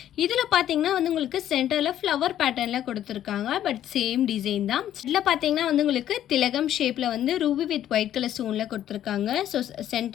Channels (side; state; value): right; quieter; 11.5 dB